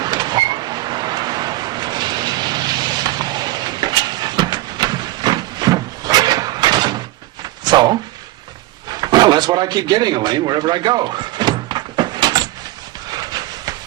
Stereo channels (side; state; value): left; quieter; 17.4 dB